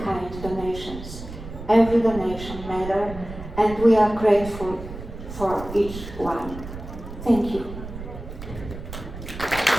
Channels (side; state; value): right; noise; rumble, 11 dB below the sound